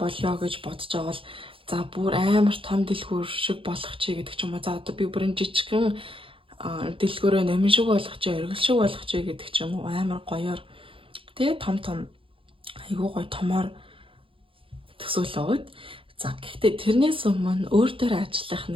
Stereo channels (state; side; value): late; left; 0.26 ms